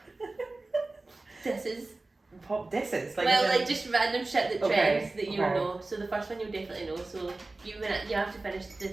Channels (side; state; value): left; quieter; 3.2 dB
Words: disses. Pop disses? Like just random shit that trends that you'll okay. know. So the first one you'll definitely know. So you have to finish